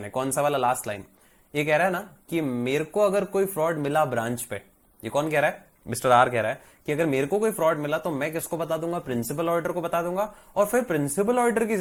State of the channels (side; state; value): both; identical; correlation 1.00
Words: है। कौन सा वाला? Last line. ये कह रहा है ना कि मेरे को अगर कोई फ्रॉड मिला ब्रांच पे, ये कौन कह रहा है? मिस्टर आर कह रहा है कि अगर मेरे को कोई फ्रॉड मिला तो मैं किसको बता दूंगा? प्रिंसिपल ऑडिटर को बता दूंगा, और फिर प्रिंसिपल ऑडिटर की